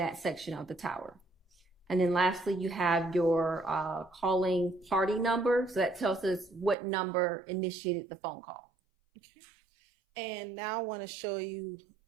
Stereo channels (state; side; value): drops out; left; at 6.8 s